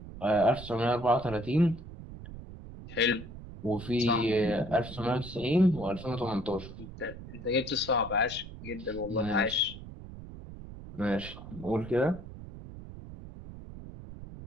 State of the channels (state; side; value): noise; right; rumble, 13 dB below the sound